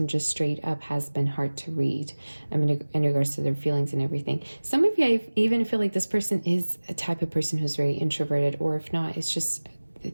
just straight up has been hard to read in regards to their feelings and everything. Some of you, I even feel like this person is a type of person who's very introverted, or if not, it's just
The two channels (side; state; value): both; inverted; correlation -1.00